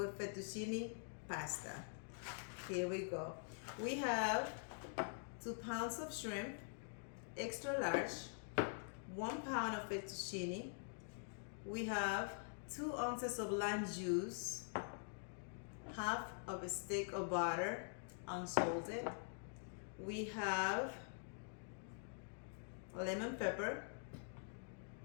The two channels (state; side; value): silent; right; digital silence